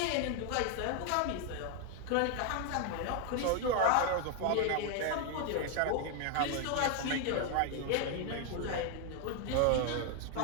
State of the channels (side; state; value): both; different; correlation 0.01